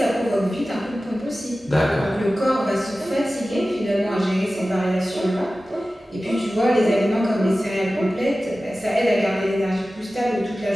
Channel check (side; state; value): both; normal; correlation 0.95